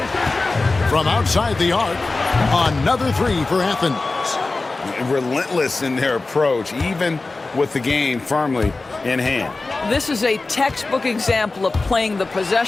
From outside the arc, another 3 for Athens. Relentless in their approach, even with the game firmly in hand. This is a textbook example of playing the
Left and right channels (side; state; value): right; quieter; 3.5 dB